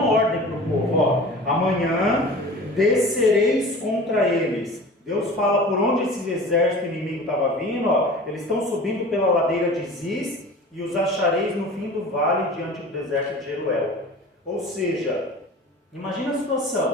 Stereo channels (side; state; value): both; normal; correlation 0.39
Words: ordem para o povo: amanhã descereis contra eles. Deus fala por onde esse exército inimigo estava vindo. Eles estão subindo pela ladeira de Ziz e os achareis no fim do vale, diante do deserto de Jeruel. Ou seja, imagina a